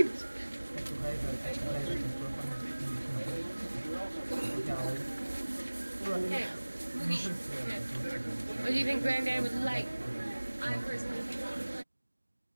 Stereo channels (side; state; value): both; inverted; correlation -1.00